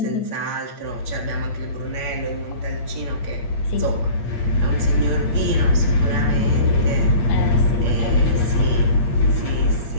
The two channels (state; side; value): late; right; 8.6 ms